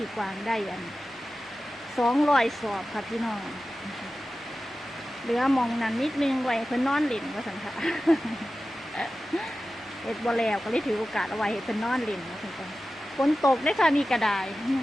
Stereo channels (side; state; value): both; normal; correlation 0.94